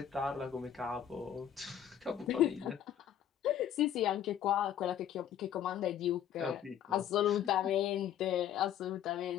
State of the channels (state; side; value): quieter; right; 10.1 dB